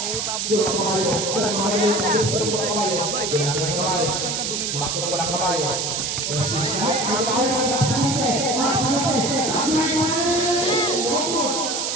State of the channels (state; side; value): noise; right; hiss, 1 dB below the sound